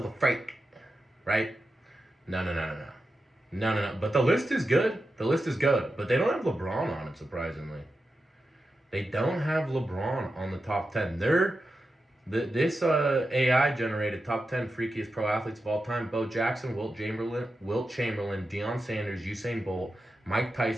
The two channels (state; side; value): normal; both; correlation 0.90